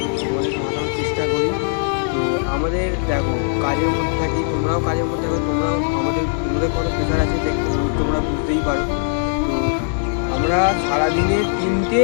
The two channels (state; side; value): silent; right; 66 dB below the other